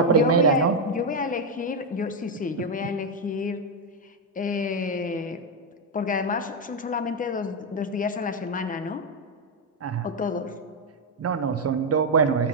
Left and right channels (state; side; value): normal; both; correlation 0.03